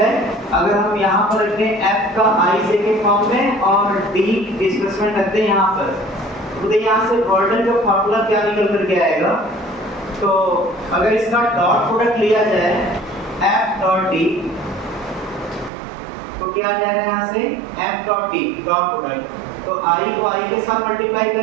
अगर हम यहाँ पर रखें f का आई जे के फॉर्म में और d डिस्प्लेसमेंट रखते हैं यहाँ पर, तो यहाँ से गॉर्डन का फार्मूला क्या निकल कर के आएगा, तो अगर इसका डॉट प्रोडक्ट लिया जाए f डॉट d, तो क्या आ जाएगा यहाँ से f dot d dot product, तो i को i के साथ मल्टीप्लाई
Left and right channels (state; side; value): drops out; left; at 15.7 s